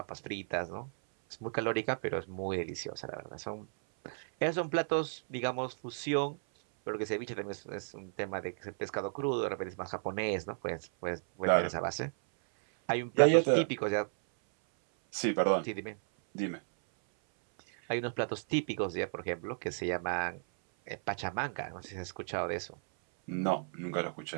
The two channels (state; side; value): silent; left; 55 dB below the other